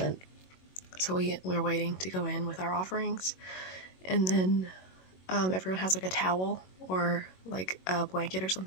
so we're waiting to go in with our offerings, and then everyone has like a towel or like a blanket or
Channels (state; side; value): late; right; 21 ms